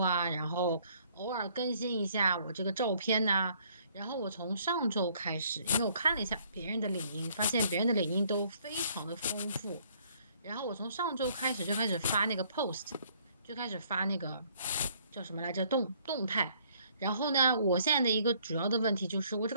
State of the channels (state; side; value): inverted; both; correlation -0.63